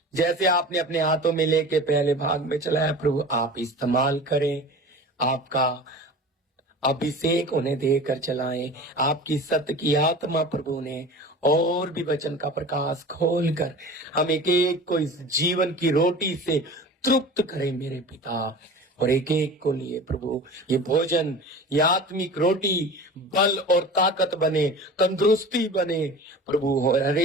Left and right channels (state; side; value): normal; both; correlation 0.37